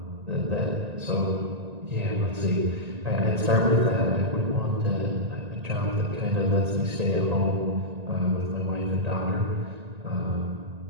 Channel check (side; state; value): left; late; 1.9 ms